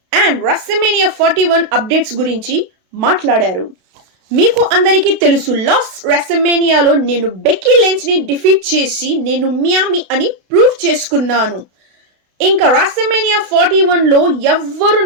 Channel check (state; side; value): late; left; 32 ms